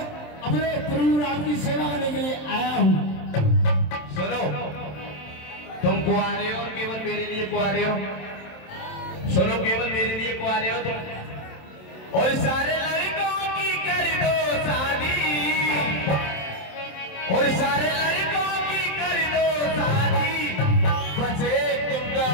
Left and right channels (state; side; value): late; right; 27 ms